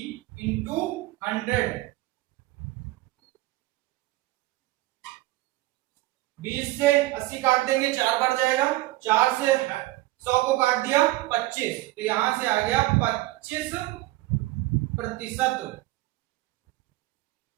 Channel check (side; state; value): left; quieter; 18.8 dB